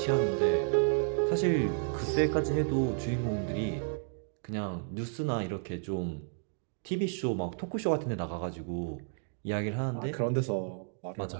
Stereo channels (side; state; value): left; silent; digital silence